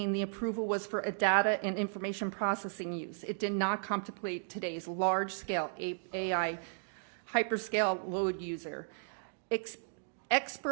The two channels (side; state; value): left; silent; digital silence